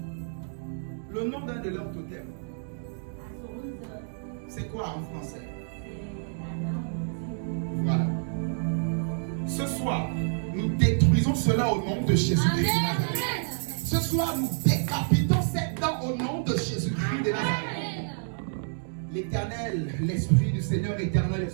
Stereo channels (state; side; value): silent; left; digital silence